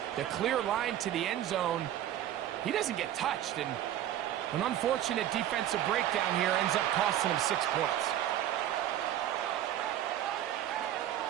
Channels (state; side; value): quieter; left; 12.0 dB